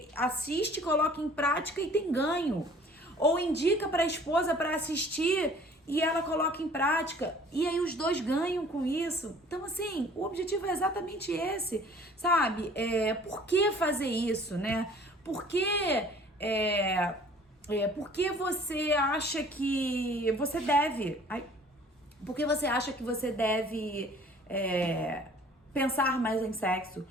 assiste, coloca em prática e tem ganho. Ou indica para a esposa para assistir e ela coloca em prática, e aí os dois ganham com isso. Então, assim, o objetivo é exatamente esse, sabe? Por que fazer isso, né? Por que você acha que você deve... por que você acha que você deve pensar mais em sexo?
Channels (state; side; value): normal; both; correlation 0.51